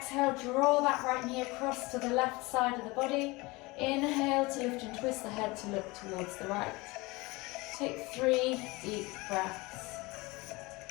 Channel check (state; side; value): quieter; right; 23.5 dB